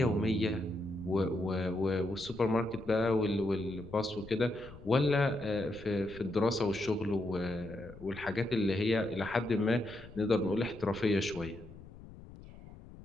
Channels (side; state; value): left; noise; rumble, 17 dB below the sound